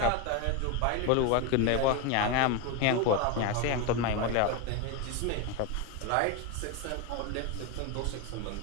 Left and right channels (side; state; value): both; different; correlation 0.03